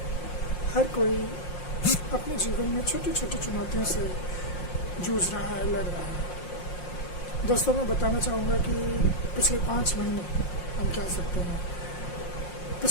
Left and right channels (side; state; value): right; late; 5.6 ms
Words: हर कोई अपने जीवन में छोटी छोटी चुनौतियों से जूझ रहा है, लड़ रहा है। दोस्तों, मैं बताना चाहूँगा कि पिछले 5 महीने हम कह सकते हैं,